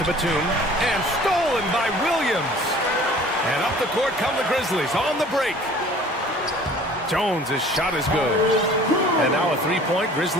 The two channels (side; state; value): both; normal; correlation 0.49